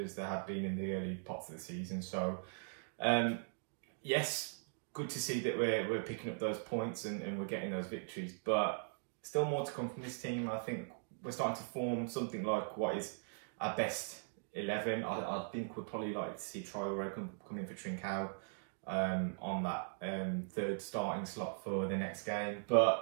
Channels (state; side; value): silent; left; digital silence